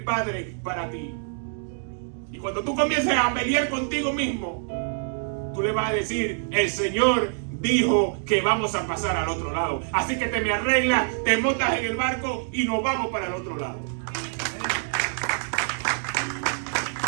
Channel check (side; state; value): left; silent; digital silence